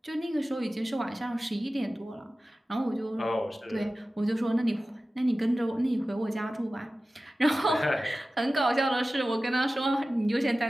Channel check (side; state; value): both; normal; correlation 0.96